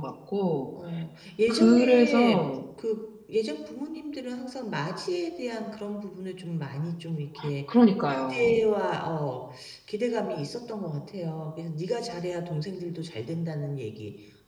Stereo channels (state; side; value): identical; both; correlation 1.00